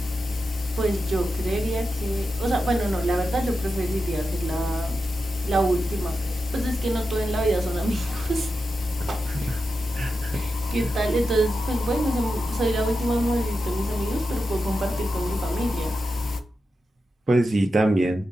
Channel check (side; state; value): both; normal; correlation 0.90